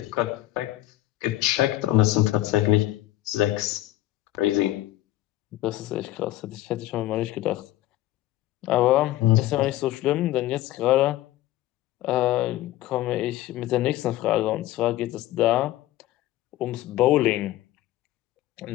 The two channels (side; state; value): right; quieter; 15.3 dB